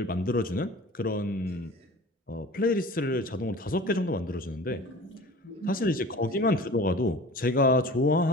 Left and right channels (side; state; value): both; normal; correlation 0.40